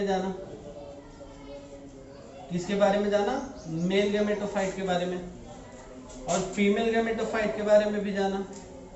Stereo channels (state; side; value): identical; both; correlation 1.00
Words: जाना। किसके बारे में जाना? मेल गैमेटोफाइट के बारे में। और फीमेल गैमेटोफाइट के बारे में भी जाना